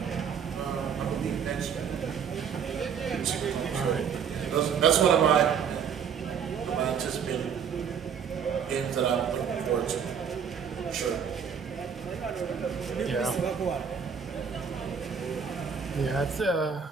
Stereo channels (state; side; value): quieter; left; 7.2 dB